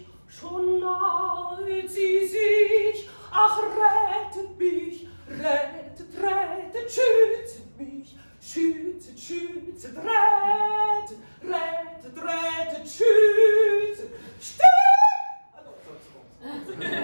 schon nahet sie sich. Ach, rettet mich, rettet, rettet, schüttet mich, schüttet, schüttet, rettet, rettet, rettet, schüttet. Still! Ah non, c'est bon.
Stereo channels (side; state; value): both; inverted; correlation -1.00